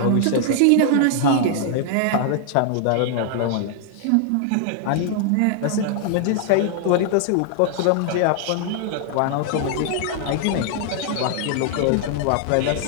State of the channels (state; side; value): different; both; correlation 0.00